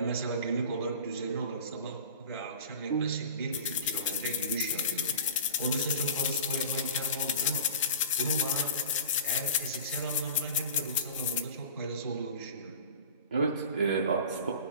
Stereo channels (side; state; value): both; inverted; correlation -0.36